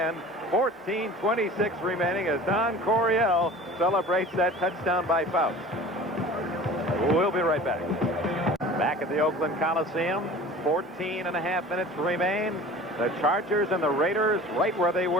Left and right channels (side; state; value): both; normal; correlation 0.42